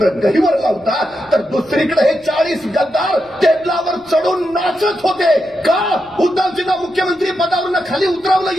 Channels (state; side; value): noise; left; rumble, 30 dB below the sound